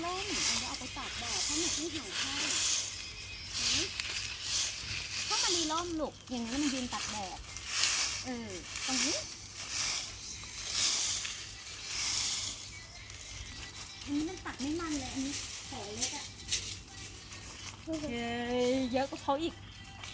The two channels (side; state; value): both; identical; correlation 1.00